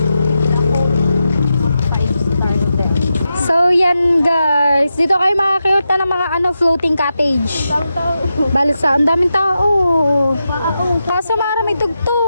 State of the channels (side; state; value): both; inverted; correlation -0.88